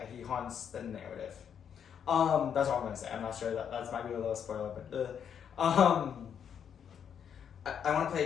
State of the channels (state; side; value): quieter; right; 8.1 dB